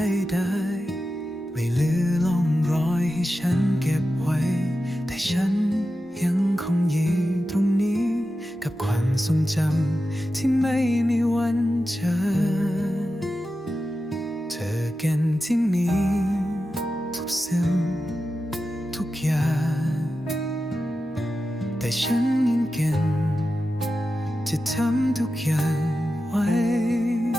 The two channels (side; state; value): both; normal; correlation 0.92